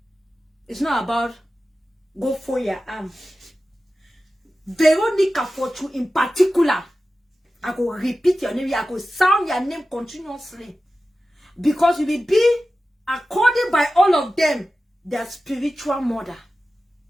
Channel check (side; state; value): both; normal; correlation 0.94